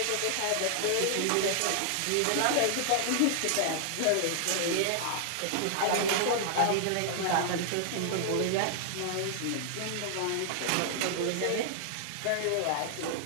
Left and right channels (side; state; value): both; different; correlation -0.01